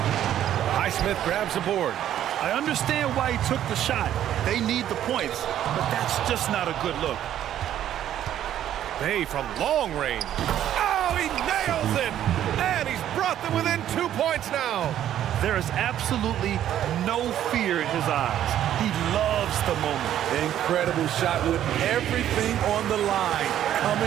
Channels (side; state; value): left; quieter; 11.2 dB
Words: Highsmith grabs the board. I understand why he took the shot. They need the points, but that's just not a good look. Bay from long range. Oh, he nails it! And he's brought them within 2 points now. There is absolutely no fear in his eyes. He loves the moment. Incredible shot with everything on the line